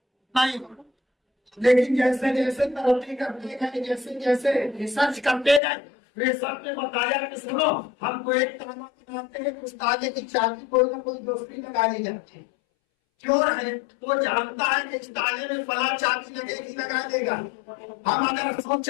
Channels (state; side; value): drops out; right; at 5.6 s